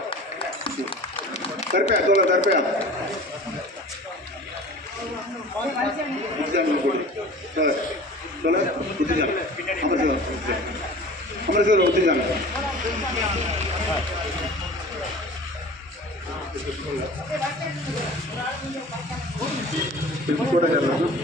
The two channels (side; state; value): both; normal; correlation 0.41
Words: தர்பையா தோழர் தர்பையா அமரசேவர் ஒத்துஞ்சாங்க. கூட